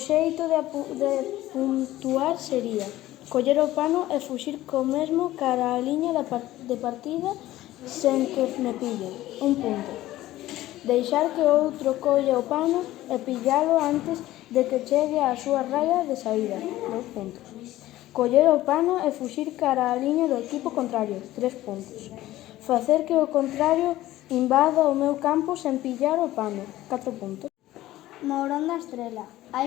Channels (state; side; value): quieter; right; 15.6 dB